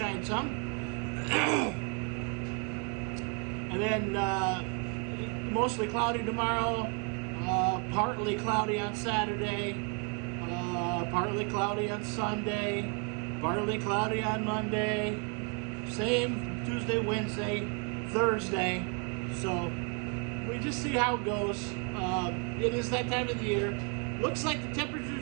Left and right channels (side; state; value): left; quieter; 36.8 dB